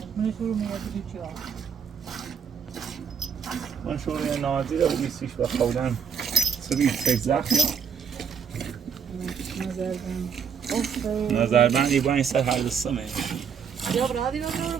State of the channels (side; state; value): left; quieter; 7.1 dB